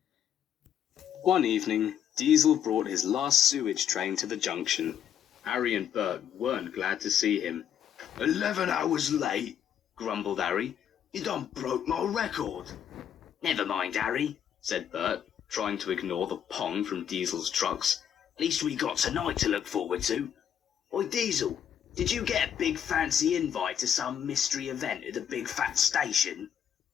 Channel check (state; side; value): quieter; right; 9.2 dB